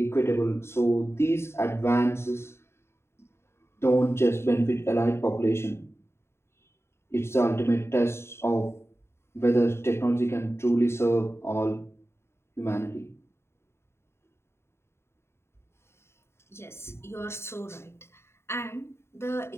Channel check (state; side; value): late; right; 0.12 ms